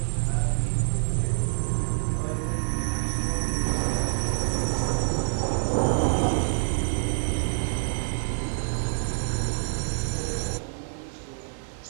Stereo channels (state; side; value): silent; left; 60 dB below the other